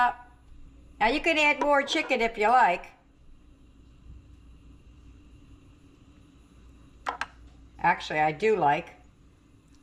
Now you can add more chicken if you like. Actually, I do like.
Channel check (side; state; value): both; identical; correlation 1.00